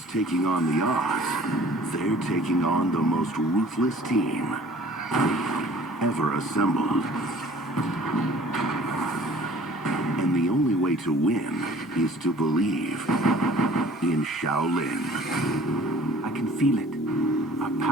taking on the odds. They're taking on the most ruthless team ever assembled. And the only way to win is to believe in Shaolin. I can feel it. Our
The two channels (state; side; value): normal; both; correlation 0.51